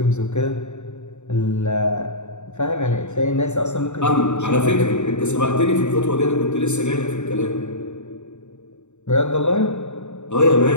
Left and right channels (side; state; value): right; late; 0.83 ms